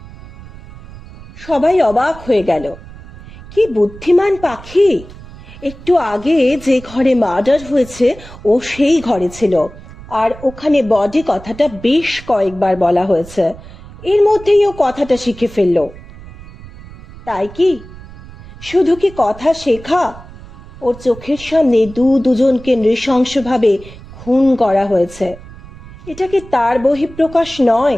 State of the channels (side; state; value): right; noise; rumble, 18 dB below the sound